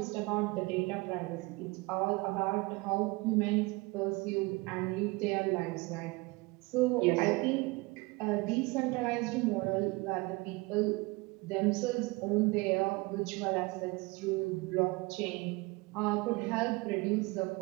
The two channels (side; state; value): left; quieter; 24.5 dB